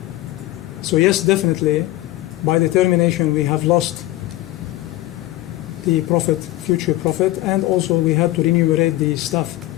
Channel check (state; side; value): quieter; right; 16.8 dB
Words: So yes, definitely, by the termination we have lost the profit, future profit, and also we had to remunerate the staff